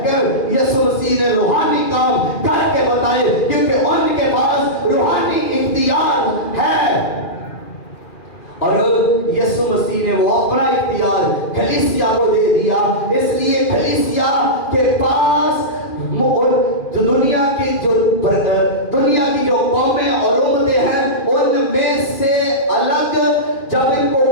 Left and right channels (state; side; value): late; right; 2.4 ms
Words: مسیح نے وہ اپنا اختیار کلیسیا کو دے دیا. اس لیے کلیسیا کے پاس دنیا کی جو قومیں اور امتیں ہیں ان میں سے الگ جب ان کو